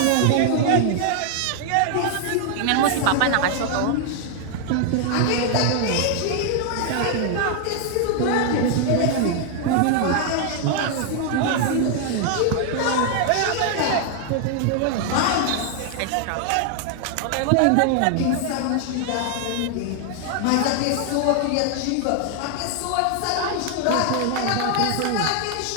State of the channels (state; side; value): different; both; correlation 0.00